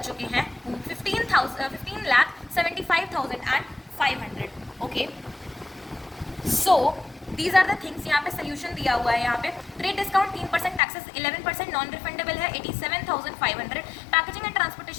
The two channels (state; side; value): drops out; right; at 10.8 s